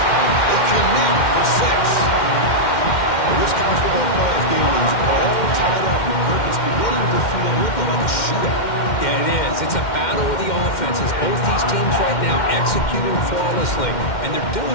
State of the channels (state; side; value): late; right; 2.1 ms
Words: They connect for 6. This college football playoff game is all tied up, and Kirk, it's beginning to feel a little like a shootout. Yeah, it is. It's a battle of the offenses. Both these teams right now executing flawlessly, and they're